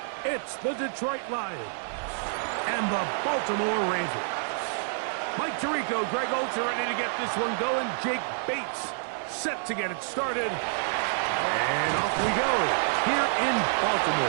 It's the Detroit Lions and the Baltimore Ravens. Mike Tirico, Greg Olds are ready to get this one going. Jake Bates set to get it started. And off we go here in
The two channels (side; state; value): left; silent; 58 dB below the other